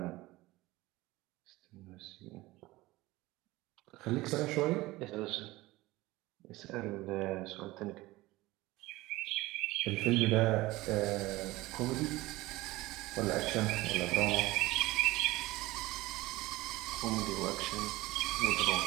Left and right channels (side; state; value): left; quieter; 19.4 dB